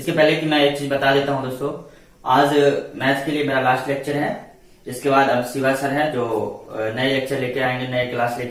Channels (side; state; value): both; identical; correlation 1.00